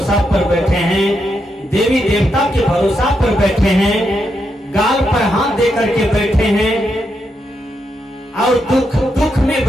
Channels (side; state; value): both; normal; correlation 0.82